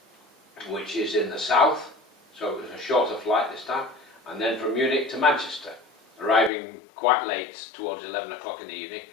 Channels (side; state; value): right; drops out; at 6.5 s